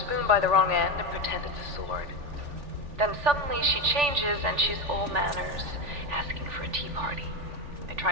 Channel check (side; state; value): left; late; 3.4 ms